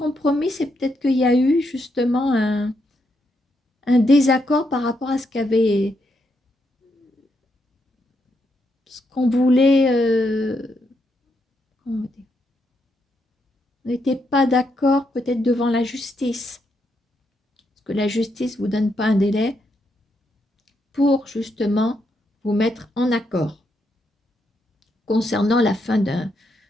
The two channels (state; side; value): normal; both; correlation 0.79